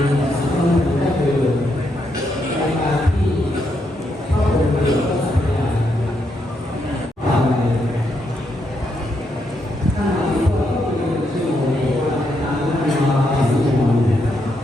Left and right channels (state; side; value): normal; both; correlation 0.79